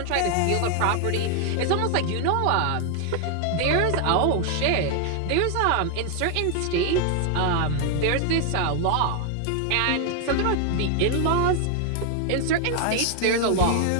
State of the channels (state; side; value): different; both; correlation 0.00